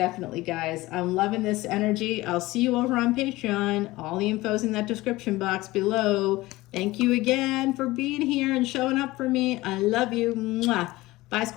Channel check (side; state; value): right; quieter; 19.1 dB